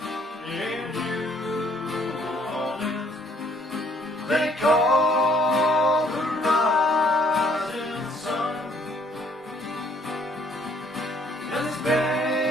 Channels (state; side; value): normal; both; correlation 0.63